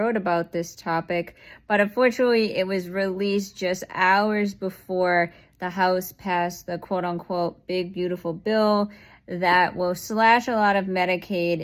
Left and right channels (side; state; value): both; identical; correlation 1.00